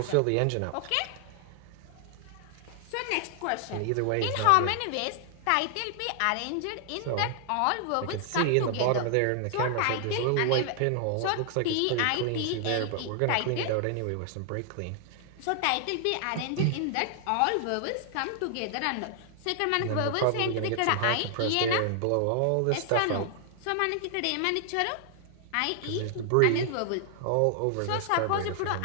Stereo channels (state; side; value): different; both; correlation 0.00